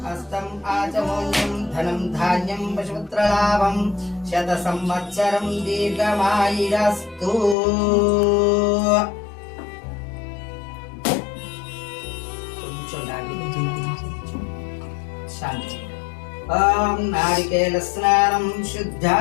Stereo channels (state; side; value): drops out; right; at 7.6 s